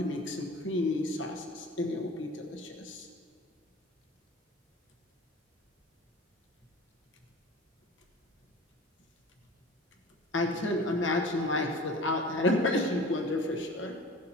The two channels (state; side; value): normal; both; correlation 0.40